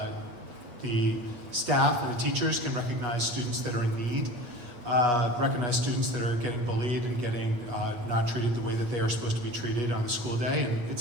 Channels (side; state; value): left; late; 8.9 ms